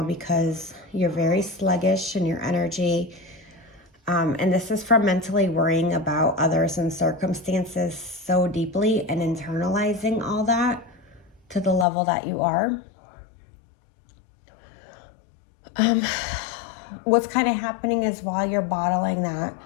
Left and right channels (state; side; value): drops out; right; at 11.9 s